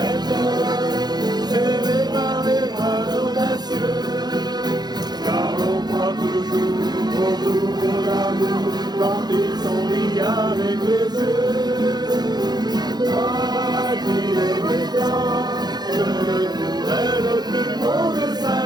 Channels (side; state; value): left; late; 0.20 ms